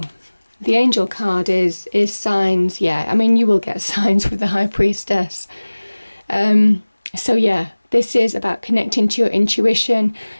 the angel card is signs. Yeah, I mean, you will get signs with the High Priestess. So yeah, this is about connecting to your intuition.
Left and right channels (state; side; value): inverted; both; correlation -1.00